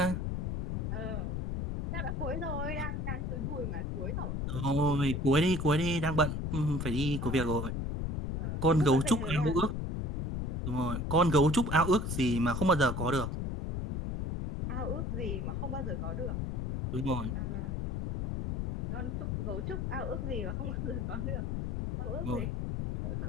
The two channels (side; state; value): left; noise; rumble, 1 dB below the sound